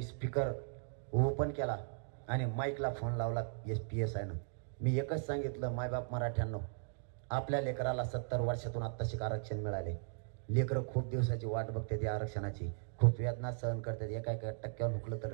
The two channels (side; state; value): left; silent; digital silence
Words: स्पीकर ओपन केला आणि माईकला फोन लावला PSI नं. मी एकच सांगितलं, मायबाप मराठ्यांनो, आपल्या लेकराला 70 वर्षातून आत्ताशी आरक्षण मिळाले. लेकरं खूप दिवसाची वाट बघते त्या आरक्षणाची, खूप वेदना सहन करतात. एका टक्क्यावर हुकलं तर